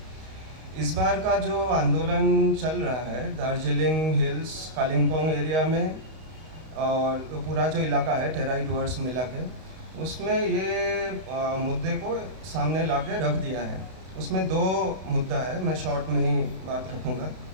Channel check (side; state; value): left; late; 32 ms